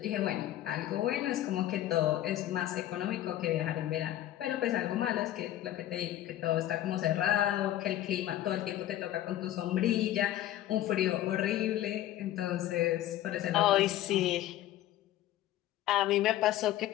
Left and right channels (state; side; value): quieter; right; 13.5 dB